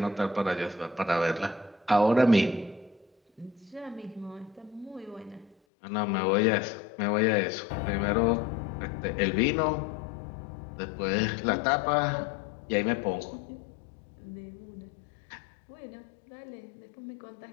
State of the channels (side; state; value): right; drops out; at 5.6 s